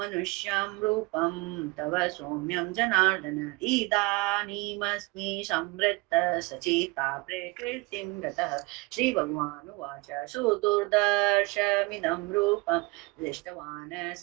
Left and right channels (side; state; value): left; quieter; 25.3 dB